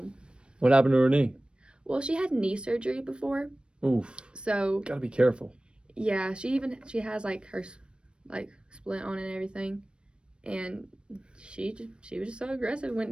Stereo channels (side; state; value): left; late; 0.055 ms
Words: What happened to her knee? Well, she had knee surgery before. Oof. So gotta be careful. Yeah, she has like her like splint on and everything. And she was just so aggressive,